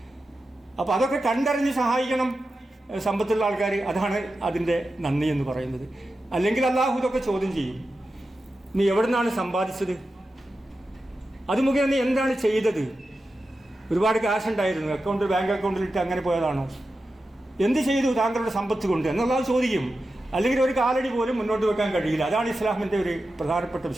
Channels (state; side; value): normal; both; correlation 0.91